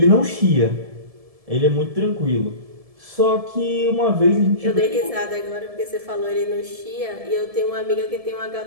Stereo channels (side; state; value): left; late; 1.7 ms